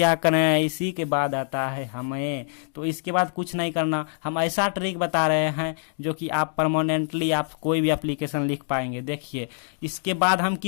करें, इसी के बाद आता है हमें, तो इसके बाद कुछ नहीं करना। हम ऐसा ट्रिक बता रहे हैं जो कि आप परमानेंटली आप कोई भी एप्लीकेशन लिख पाएंगे। देखिए, इसके बाद हम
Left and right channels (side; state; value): right; silent; digital silence